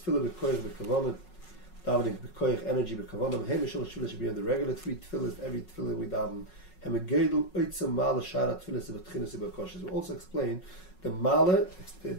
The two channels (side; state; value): right; late; 5.4 ms